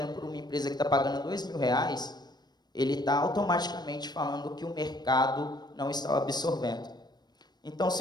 por uma empresa que está pagando R$2.000, ele está automaticamente falando que o mercado não está absorvendo. Então,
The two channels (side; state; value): right; late; 0.20 ms